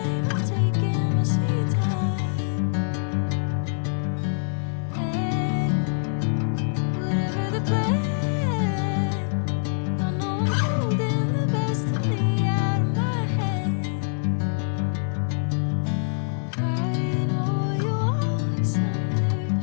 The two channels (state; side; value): silent; right; digital silence